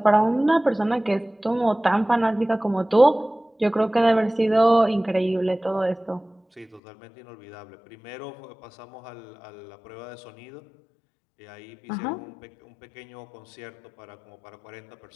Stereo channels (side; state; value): right; drops out; at 6.8 s